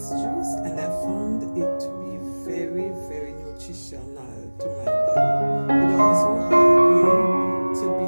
juice and I found it to be very, very nutritional to my body. It also helped me to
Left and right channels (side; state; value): both; inverted; correlation -1.00